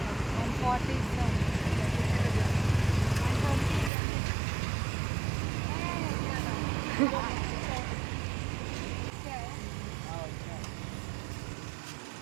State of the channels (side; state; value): left; drops out; at 3.9 s